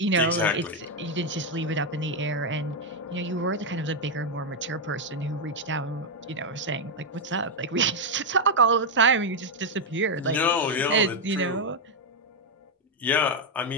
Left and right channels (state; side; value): normal; both; correlation 0.01